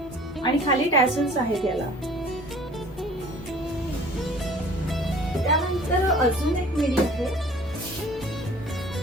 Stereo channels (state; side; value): normal; both; correlation 0.49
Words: आणि खाली टॅसल्स आहेत याला. त्यानंतर अजून एक मिडी आहे